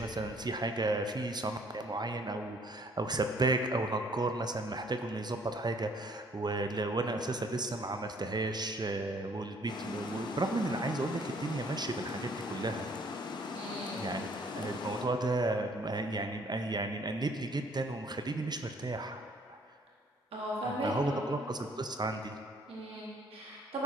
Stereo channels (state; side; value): normal; both; correlation 0.60